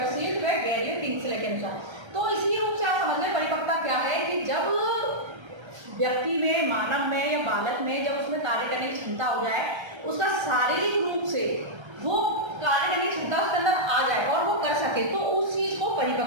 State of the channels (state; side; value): late; left; 1.3 ms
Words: व गैरियो किंग्सले के अनुसार। तो इसी रूप से आप समझ लें परिपक्वता क्या है कि जब व्यक्ति में, मानव में या बालक में जब उसमें कार्य करने की क्षमता हो जाए, उसका शारीरिक रूप से वो कार्य करने की क्षमता उसके अंदर आ जाए और वो कर सके, तो उस चीज को